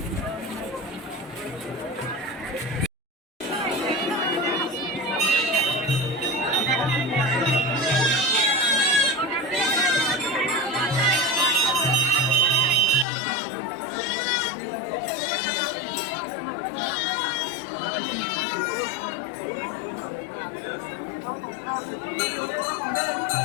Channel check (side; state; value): right; drops out; at 13.1 s